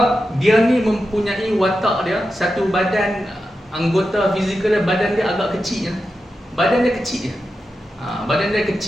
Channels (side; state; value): both; normal; correlation 0.90